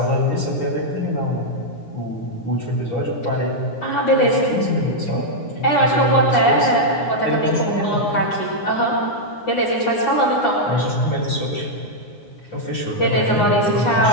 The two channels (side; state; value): right; late; 9.7 ms